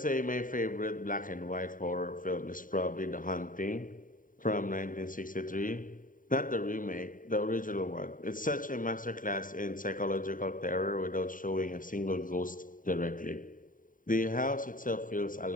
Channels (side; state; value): right; late; 0.39 ms